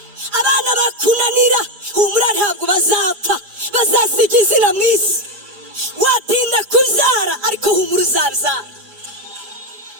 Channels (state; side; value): late; left; 4.9 ms